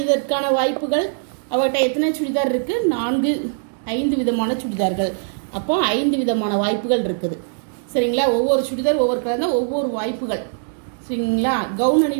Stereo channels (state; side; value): silent; left; digital silence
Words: வாய்ப்புகள் அவர்கிட்ட எத்தனை சுடிதார் இருக்குது? 5 விதமான சுடிதார்கள். அப்போ 5 விதமான வாய்ப்புகள் இருக்குது. சரிங்களா? ஒவ்வொரு சுடிதார் ஒவ்வொரு கலர் ஒவ்வொரு வாய்ப்புகள். சரிங்களா? கவுன்